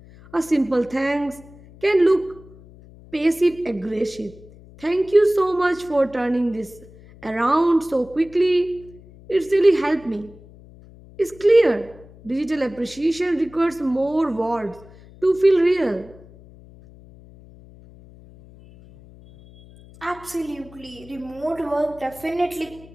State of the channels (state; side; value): noise; left; hum, 22 dB below the sound